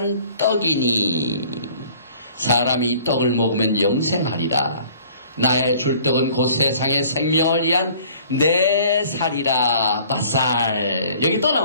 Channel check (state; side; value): inverted; both; correlation -0.53